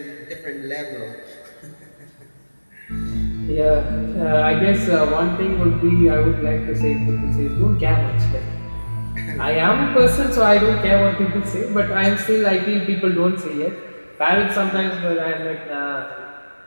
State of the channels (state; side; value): inverted; both; correlation -1.00